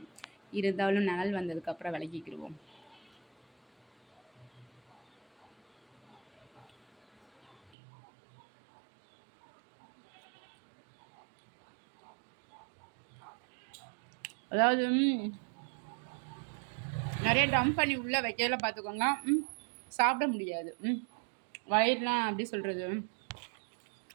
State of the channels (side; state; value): left; drops out; at 7.7 s